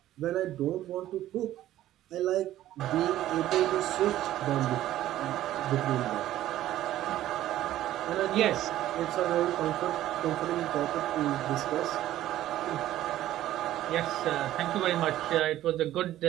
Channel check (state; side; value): quieter; left; 13.6 dB